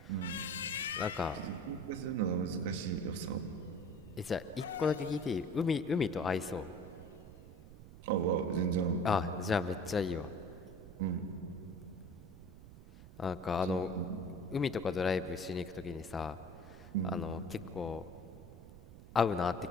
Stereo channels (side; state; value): right; noise; rumble, 16 dB below the sound